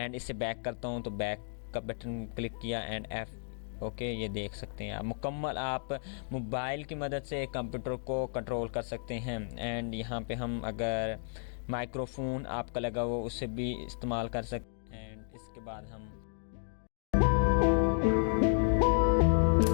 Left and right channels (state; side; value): silent; right; digital silence